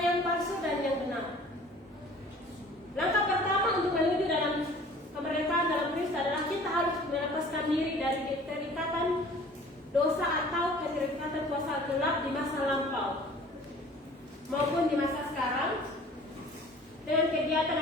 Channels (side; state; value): both; normal; correlation 0.48